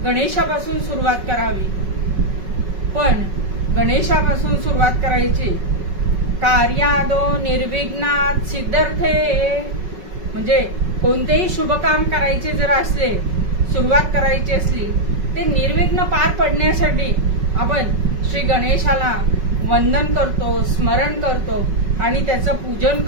गणेशापासून सुरुवात करावी. पण गणेशापासून सुरुवात करायची. कार्यादो निर्विघ्नात सिद्धर्थे, म्हणजे कोणतेही शुभ काम करायचे जर असले, सुरुवात करायची असली, ते निर्विघ्न पार पडण्यासाठी आपण श्री गणेशाला वंदन करतो, स्मरण करतो आणि त्याचं पूजन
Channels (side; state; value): left; late; 5.3 ms